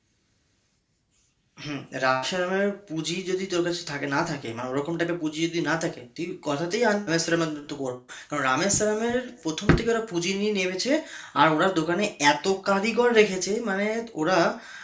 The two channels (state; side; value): identical; both; correlation 1.00